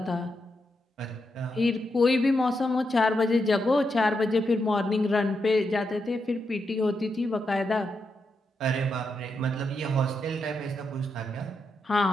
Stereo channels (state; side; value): normal; both; correlation 0.84